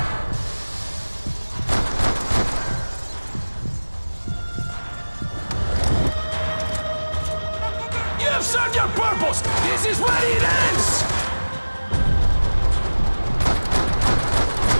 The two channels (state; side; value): inverted; both; correlation -1.00